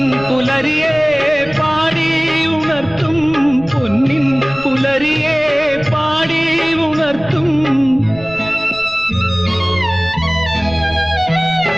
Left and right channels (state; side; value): noise; right; rumble, 17 dB below the sound